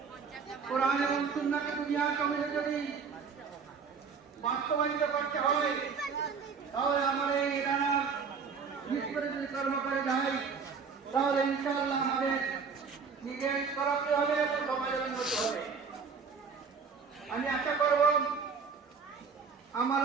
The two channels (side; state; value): left; quieter; 5.6 dB